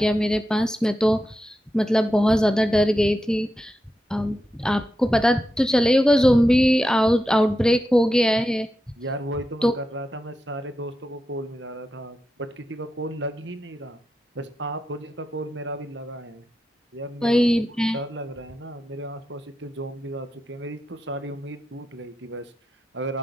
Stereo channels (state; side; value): normal; both; correlation 0.89